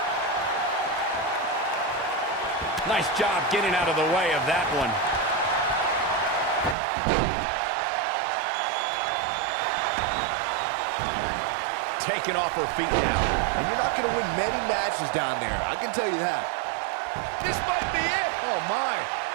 Nice job getting out of the way of that one. Taken off her feet now. And you're not going to win many matches down there, I can tell you that. This might be it. Oh, my.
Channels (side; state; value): left; drops out; at 6.8 s